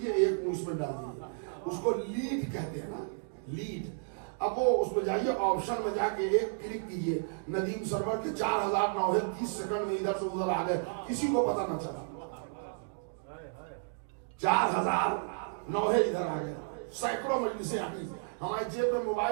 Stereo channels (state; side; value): silent; left; digital silence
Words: ایک منہ اس میں ڈال دیجئے. اس کو لیڈ کہتے ہیں نا, لیڈ. اب وہ اس میں جائیے, آپشن میں جا کے ایک کلک کیجئے, ندیم سرور کے 4009 30 سیکنڈ میں ادھر سے ادھر آ گئے, کسی کو پتہ نہ چلا. 4009 ادھر آ گئے, سینکڑوں مجلسیں آ گئی. ہمارے جیب میں